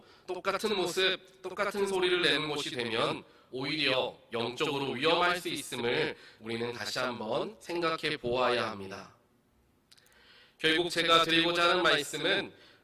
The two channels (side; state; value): both; identical; correlation 1.00